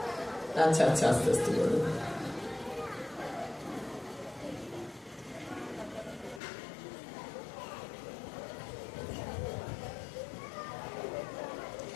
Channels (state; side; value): drops out; right; at 6.4 s